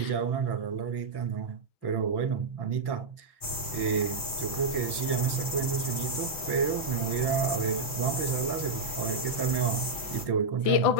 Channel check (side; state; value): right; late; 5.8 ms